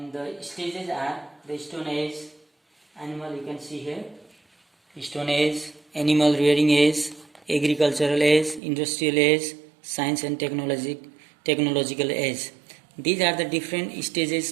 the stages are the Stone Age, animal, you can see here, Stone Age, animal rearing age, agricultural age, industrial age, science and technological age. These are the different stages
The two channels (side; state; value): left; drops out; at 8.6 s